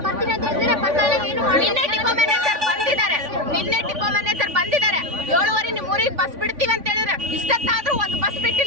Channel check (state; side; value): late; left; 3.5 ms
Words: ನಿನ್ನೆ ಡಿಪೋ ಮ್ಯಾನೇಜರ್ ಬಂದಿದ್ದಾರೆ. 7:15 ನಿಮ್ಮೂರಿಗೆ ಬಸ್ ಬಿಡ್ತೀವಿ ಅಂತ ಹೇಳಿದ್ರೆ ಇಷ್ಟೊತ್ತಾದ್ರೂ ಒಂದು ಬಸ್